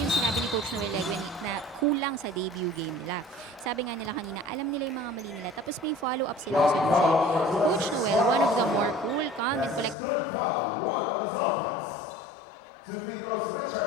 sinabi ni Coach Noel Leguin na kulang sa debut game nila. Sabi nga nila kanina, alam nila yung mga mali nila, tapos may follow-up silang solution. Coach Noel, one of the more cool, calm, and collected coaches, just reminded his boys, alam nyo guys, communicate lang tayo more on the court.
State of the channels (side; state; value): right; drops out; at 10.0 s